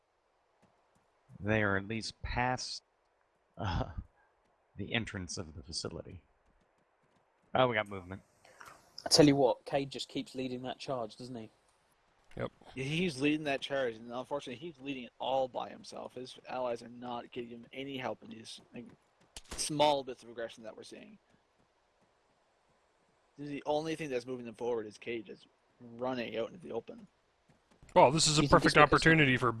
They are at least past the entrance of the facility. Oh, we got movement. I tell you what, Cade just keeps leading that charge, doesn't he? Yep. Yeah, he's leading that charge, and unfortunately, he's leading it all by himself. His allies are not giving him any help in these small bits of aggression that we're seeing. The only thing that's moving them forward is Cade just running out into the open. Well, this is a perfect opportunity for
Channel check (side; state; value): both; identical; correlation 1.00